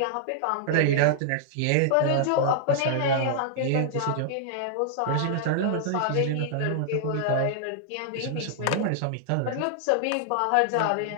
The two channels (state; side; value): different; both; correlation -0.01